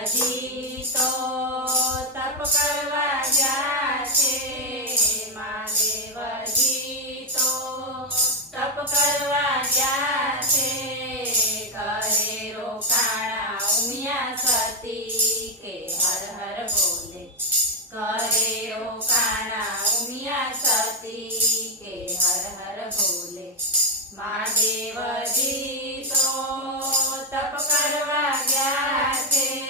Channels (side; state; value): both; normal; correlation 0.06